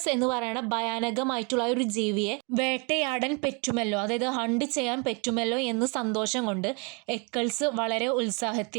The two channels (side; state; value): left; quieter; 32.8 dB